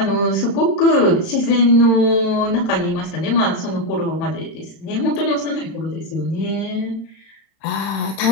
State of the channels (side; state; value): right; late; 31 ms